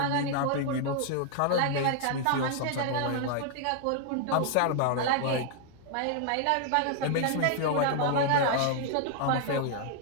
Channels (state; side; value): different; both; correlation 0.00